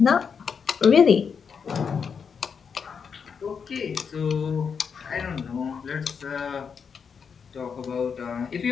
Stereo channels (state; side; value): quieter; right; 6.3 dB